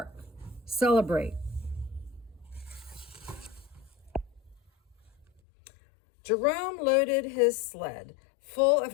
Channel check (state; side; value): drops out; right; at 5.2 s